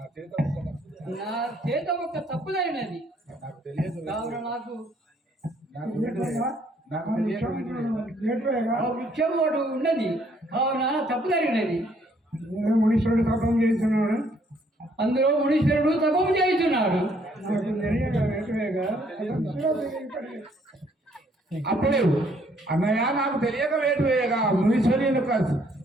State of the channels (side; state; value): both; normal; correlation 0.66